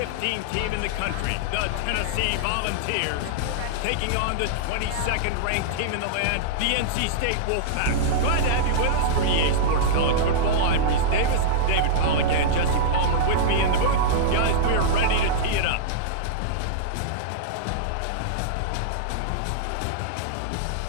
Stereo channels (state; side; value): different; both; correlation -0.02